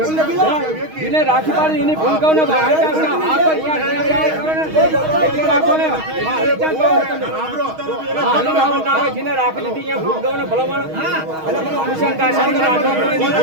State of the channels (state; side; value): late; left; 6.4 ms